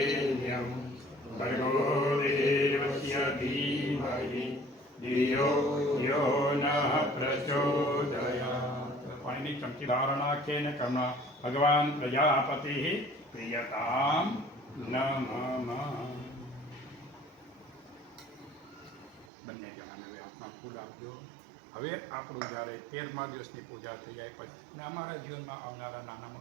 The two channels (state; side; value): drops out; left; at 19.3 s